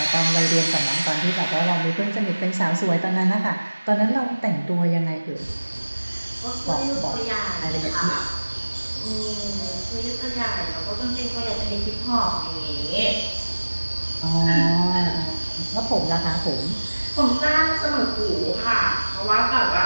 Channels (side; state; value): both; inverted; correlation -1.00